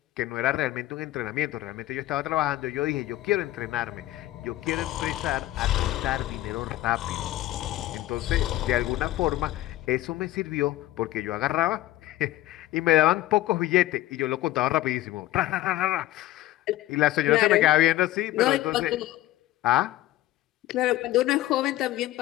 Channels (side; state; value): right; quieter; 15.8 dB